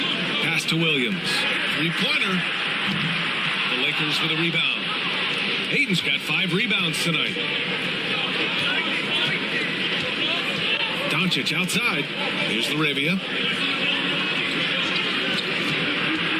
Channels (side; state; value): both; identical; correlation 1.00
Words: Pass to Williams. 3-pointer. The Lakers with a rebound. Aiden's got 5 rebounds tonight. Doncic outside. Here's LaRavia.